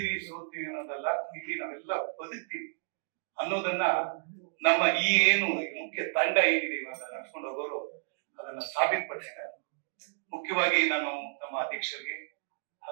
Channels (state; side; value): silent; left; digital silence